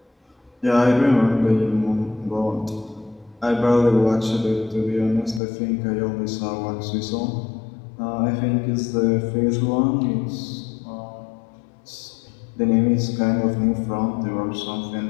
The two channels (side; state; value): right; drops out; at 5.4 s